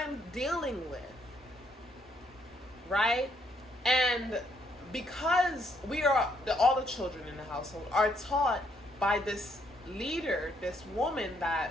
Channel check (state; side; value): normal; both; correlation 0.72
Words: dealing with, right? And because all the children in the household are taught by this leader, this woman,